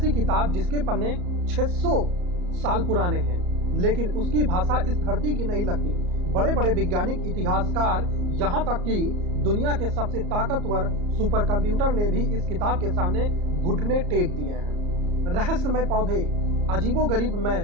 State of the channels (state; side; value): late; left; 34 ms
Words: किताब जिसके पन्ने 600 साल पुराने हैं, लेकिन उसकी भाषा इस धरती की नहीं लगती। बड़े बड़े वैज्ञानिक, इतिहासकार, यहाँ तक कि दुनिया के सबसे ताकतवर सुपर कंप्यूटर ने भी इस किताब के सामने घुटने टेक दिए हैं। रहस्यमय पौधे, अजीबोगरीब